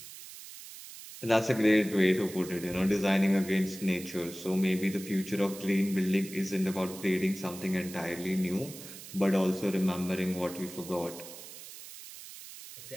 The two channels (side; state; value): right; noise; hiss, 14 dB below the sound